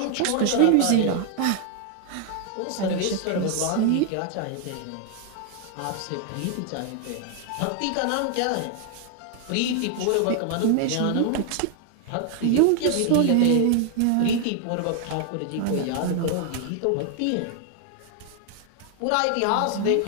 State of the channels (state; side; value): different; both; correlation 0.00